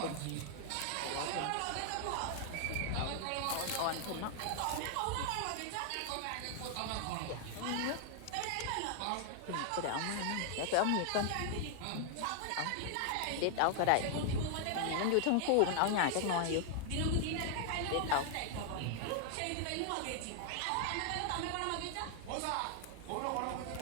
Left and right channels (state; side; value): different; both; correlation 0.00